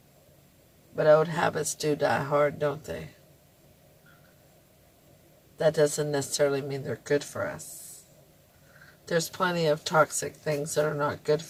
But old habits do die hard, don't they? That doesn't necessarily mean they're good for us. There's plenty of toxic things that are not good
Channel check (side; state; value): both; identical; correlation 1.00